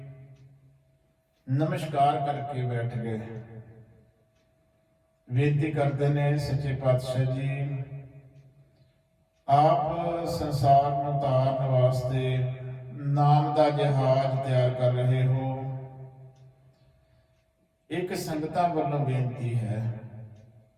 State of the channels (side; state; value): both; identical; correlation 1.00